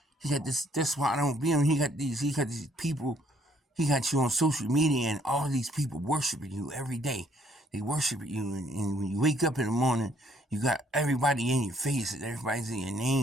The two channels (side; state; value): both; normal; correlation 0.65